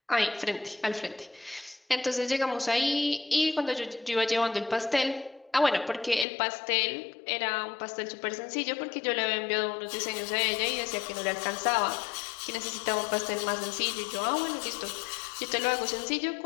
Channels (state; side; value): drops out; right; at 6.2 s